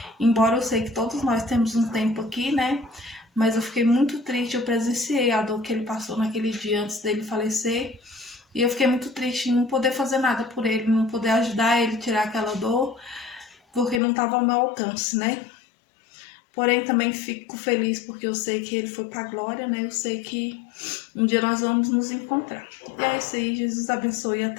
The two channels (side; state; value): right; drops out; at 14.0 s